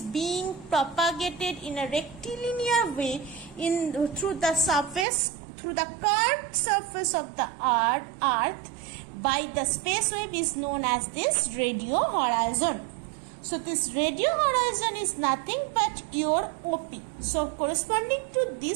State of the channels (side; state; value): left; drops out; at 5.1 s